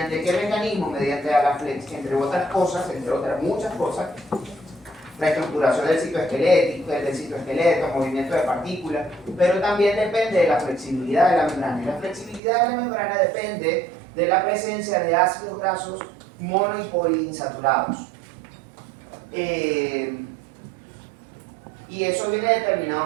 qué mecanismo? Mediante Agaflex, entre otras cosas, entre otras muchas cosas, la estructuración del citoesqueleto, movimiento de partículas, pero también depende de la flexibilidad de la membrana. Y la flexibilidad de la membrana depende de la presencia de ácidos grasos mono y poliinsaturados. Y eso viene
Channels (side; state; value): left; drops out; at 12.4 s